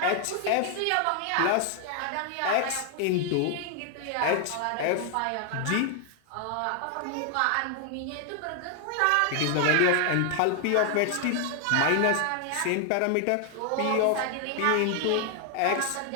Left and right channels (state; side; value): different; both; correlation 0.00